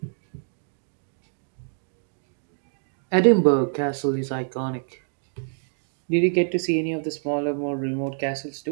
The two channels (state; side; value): silent; left; digital silence